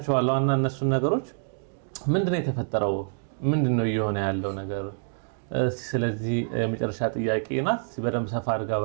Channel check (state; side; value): silent; left; digital silence